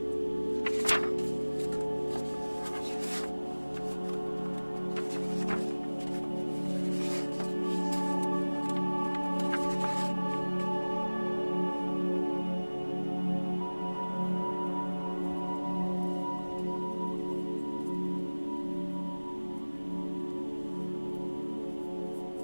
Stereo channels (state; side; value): inverted; both; correlation -1.00